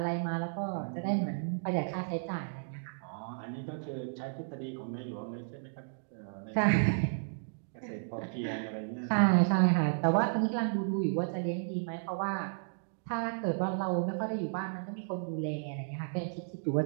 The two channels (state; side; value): silent; left; digital silence